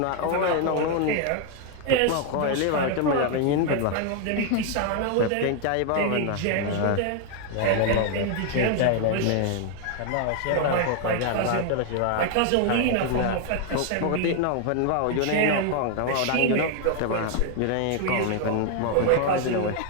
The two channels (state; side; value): different; both; correlation 0.00